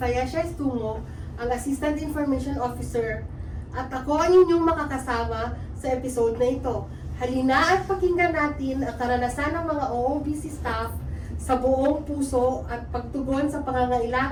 Estungo, ang Assistant Information Officer, at ako ang inyong makakasama sa episode na ito. Halina at pakinggan natin ang karanasan ng mga OOBC staff sa buong puso at pagtugon sa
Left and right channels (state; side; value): identical; both; correlation 1.00